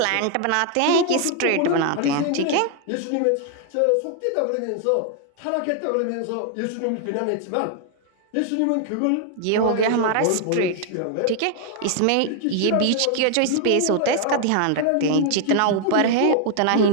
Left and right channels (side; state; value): both; different; correlation 0.00